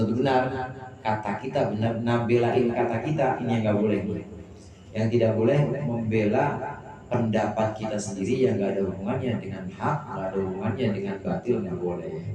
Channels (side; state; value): both; identical; correlation 1.00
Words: benar. Kata kita benar, nabelain kata kita, ini yang nggak boleh. Yang tidak boleh membela pendapat kita sendiri yang nggak ada hubungannya dengan hak, nggak ada hubungannya dengan batil, nggak boleh.